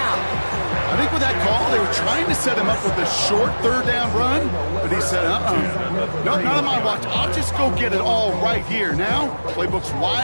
I think with that call, they were trying to set him up with a short 3rd down run, but he said, no, not on my watch. I'll just go get it all right here. Now, playbook's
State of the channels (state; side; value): inverted; both; correlation -1.00